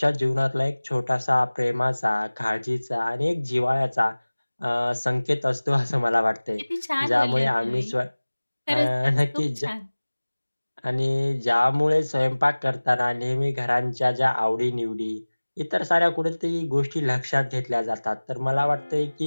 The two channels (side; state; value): both; inverted; correlation -1.00